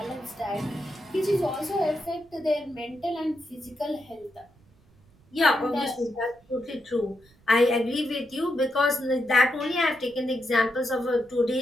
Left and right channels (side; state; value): right; noise; rumble, 30 dB below the sound